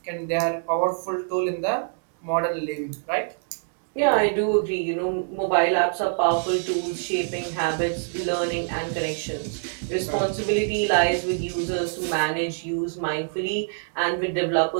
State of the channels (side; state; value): left; silent; digital silence